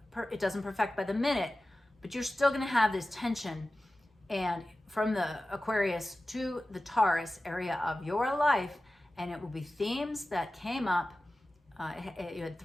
doesn't perfect by the minute, but you're still gonna have this tension. And from the Aquarius to the Taurus area of your life, and it will be themes that came up. You had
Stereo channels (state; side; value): normal; both; correlation 0.95